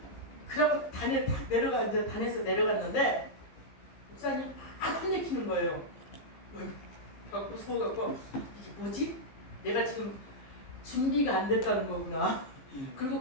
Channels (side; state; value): right; late; 15 ms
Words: 단에 탁 내려가, 이제 단에서 내려갔는데 목사님 막 혼내키는 거예요. 그래갖고 속아갖고 이게 뭐지? 내가 지금 준비가 안 됐다는 거구나. 그리고